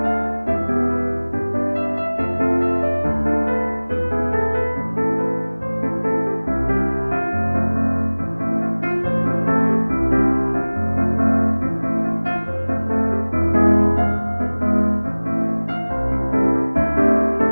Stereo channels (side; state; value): both; inverted; correlation -1.00